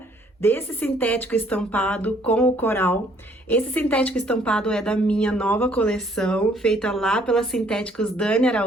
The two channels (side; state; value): both; normal; correlation 0.63